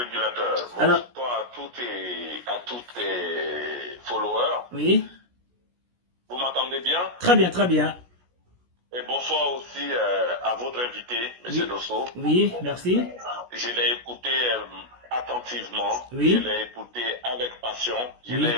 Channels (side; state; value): left; late; 16 ms